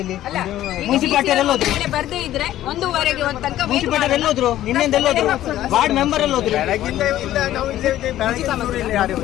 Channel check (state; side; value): quieter; right; 13.4 dB